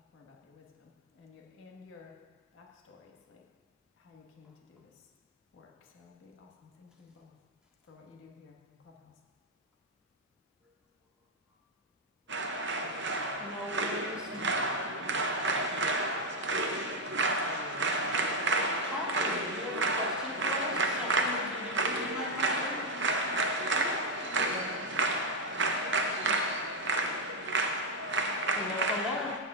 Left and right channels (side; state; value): both; normal; correlation 0.03